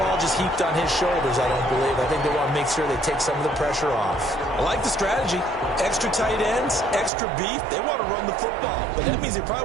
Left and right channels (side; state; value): left; drops out; at 7.1 s